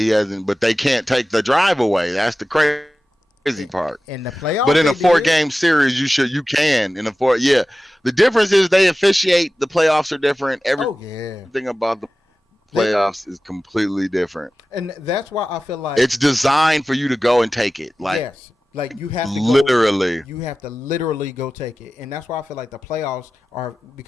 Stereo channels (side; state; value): both; normal; correlation 0.95